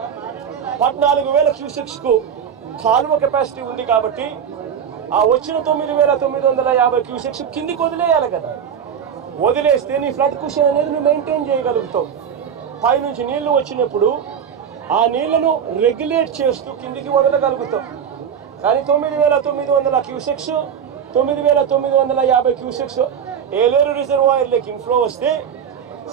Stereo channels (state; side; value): quieter; left; 8.0 dB